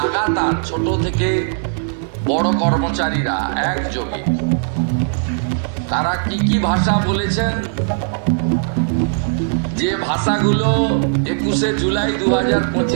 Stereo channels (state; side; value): silent; left; 67 dB below the other